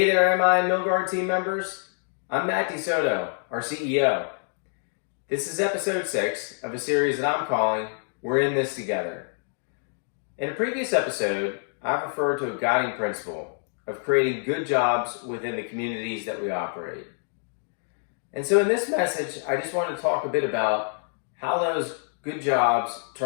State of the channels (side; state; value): right; silent; 61 dB below the other